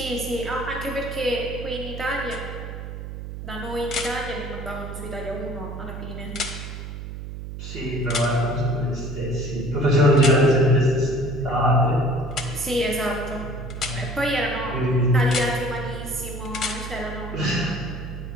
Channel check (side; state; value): right; noise; hum, 9 dB below the sound